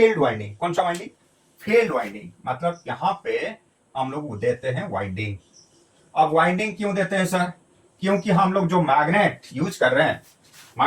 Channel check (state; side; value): identical; both; correlation 1.00